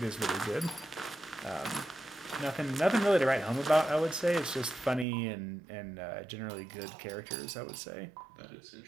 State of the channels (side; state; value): left; drops out; at 5.1 s